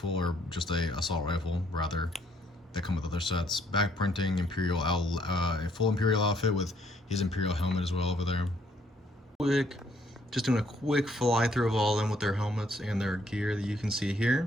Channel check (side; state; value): both; normal; correlation 0.68